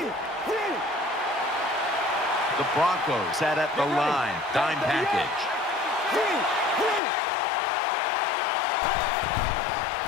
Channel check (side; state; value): right; drops out; at 7.0 s